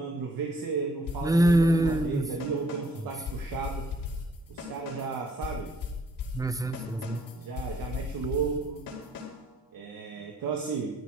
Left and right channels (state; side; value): normal; both; correlation 0.64